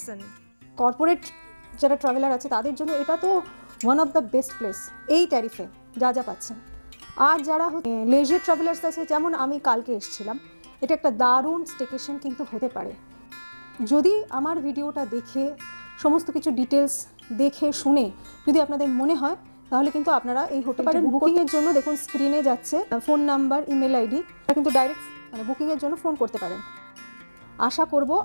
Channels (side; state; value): both; inverted; correlation -1.00